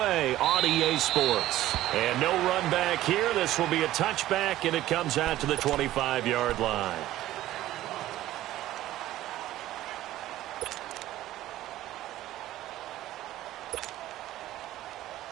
on EA Sports. And no run back here. This will be a touchback, and it comes out to the 25-yard line.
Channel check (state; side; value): quieter; left; 14.6 dB